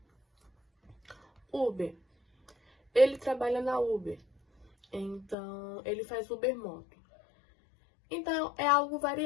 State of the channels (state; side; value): drops out; right; at 5.4 s